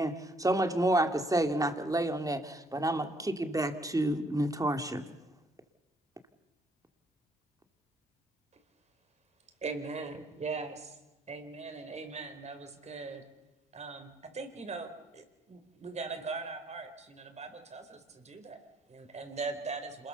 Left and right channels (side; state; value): both; normal; correlation 0.68